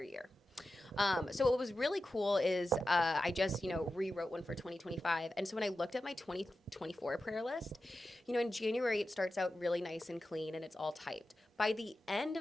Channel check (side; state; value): both; normal; correlation 0.92